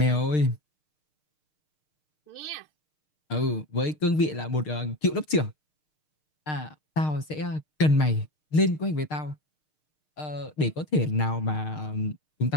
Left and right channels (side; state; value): right; late; 6.5 ms